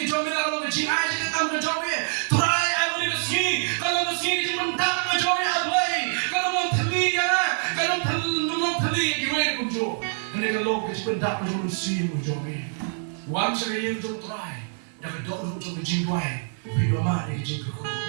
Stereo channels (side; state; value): left; silent; 60 dB below the other